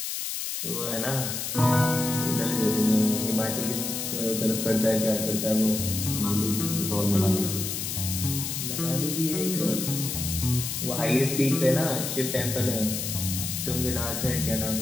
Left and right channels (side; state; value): left; noise; hiss, 3 dB below the sound